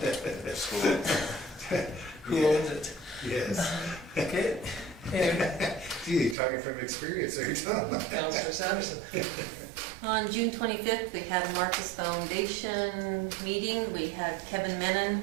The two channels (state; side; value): drops out; left; at 6.4 s